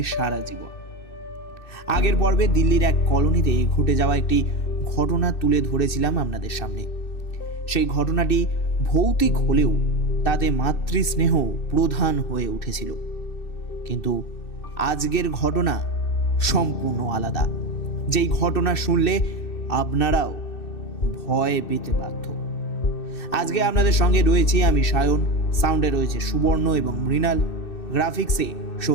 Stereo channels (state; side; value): late; right; 2.6 ms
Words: সারা জীবন। আগের পর্বে দিল্লির এক কলোনিতে ঘটে যাওয়া একটি ঘটনা তুলে ধরেছিলাম আপনাদের সামনে। সেই ঘটনাটি ভৌতিক হলেও তাতে মাতৃস্নেহ প্রধান হয়ে উঠেছিল, কিন্তু আজকের ঘটনা সম্পূর্ণ আলাদা। যেই ঘটনা শুনলে আপনারাও ভয় পেতে বাধ্য। আজকে আপনাদের সঙ্গে রয়েছি আমি সায়ন, সাউন্ডে রয়েছে সুবর্ণ এবং মৃণাল, গ্রাফিক্সে